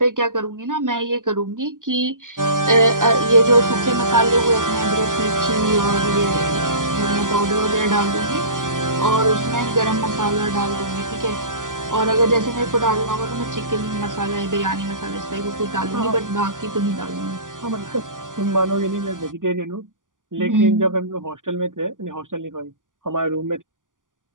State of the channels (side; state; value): left; late; 0.88 ms